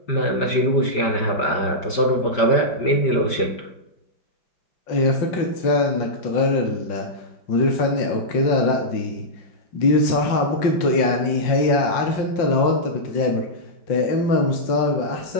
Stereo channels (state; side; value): late; right; 5.1 ms